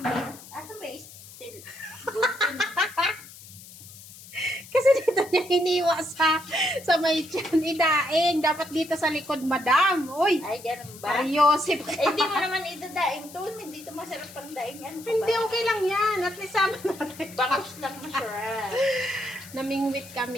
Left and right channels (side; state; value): left; noise; hiss, 18 dB below the sound